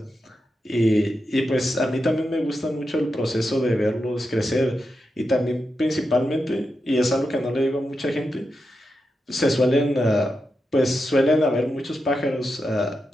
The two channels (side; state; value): both; normal; correlation 0.88